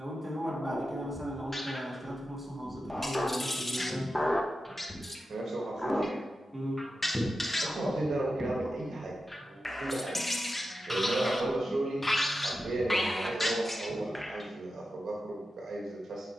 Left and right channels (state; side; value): normal; both; correlation 0.91